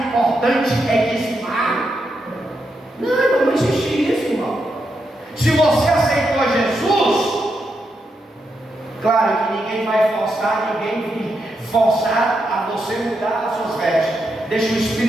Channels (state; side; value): normal; both; correlation 0.83